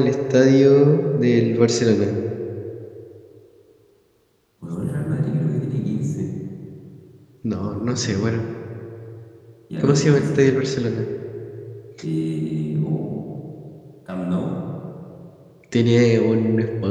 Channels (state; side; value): identical; both; correlation 1.00